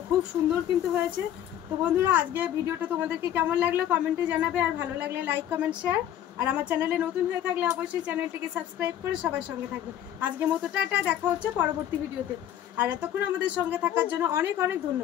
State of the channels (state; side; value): quieter; right; 11.1 dB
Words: খুব সুন্দর কিন্তু হয়েছে। তো বন্ধুরা আজকে ভিডিওটা তোমাদেরকে কেমন লাগলো কমেন্টে জানাবে, আর ভালো লাগলে লাইক কমেন্ট শেয়ার, আর আমার চ্যানেলে নতুন হয়ে থাকলে অবশ্যই চ্যানেলটিকে সাবস্ক্রাইব করে সবার সঙ্গে থাকবে। আজকের মতো টাটা, দেখা হচ্ছে পরবর্তী ভিডিওতে। আর এতক্ষণ আমাদের সঙ্গে থাকার জন্য অনেক অনেক